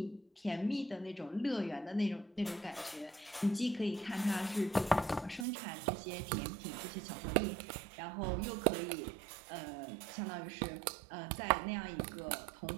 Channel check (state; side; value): drops out; left; at 5.5 s